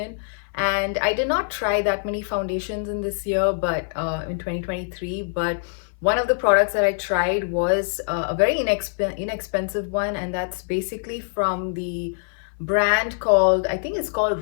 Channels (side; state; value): right; silent; 58 dB below the other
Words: And I did not try that many foundations in this year, but in 2023. But one of the products that I tried was a very inexpensive one, and that's basically from the brand called, I think it's